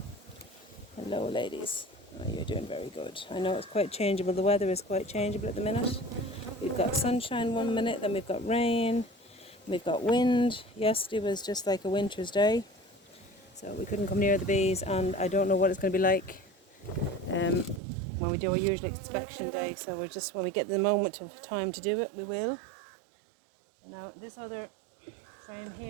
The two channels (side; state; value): left; drops out; at 17.8 s